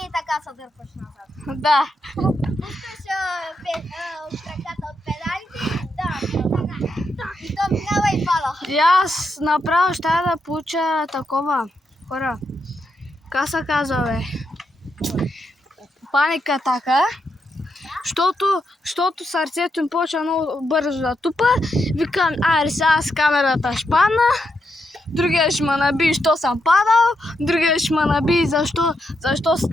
така се дърпаш назад. Да. Пускаш краката от педалите, и то минава и пала. И аз направо ще да получа такова, хора. Как се казва, бе? Паника атака. Защото сърцето им почва много бързо да тупа. Викам, сега с камерата ще падна. Другия ще ме наби, що съм падал. Другия ще ме наби, защо с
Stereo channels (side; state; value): both; normal; correlation 0.82